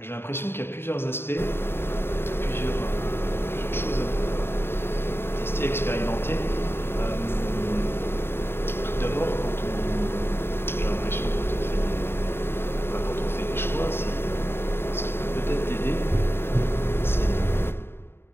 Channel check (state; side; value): late; right; 0.11 ms